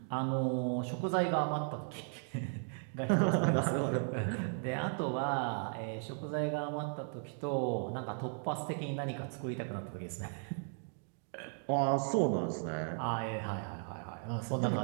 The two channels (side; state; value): left; silent; 54 dB below the other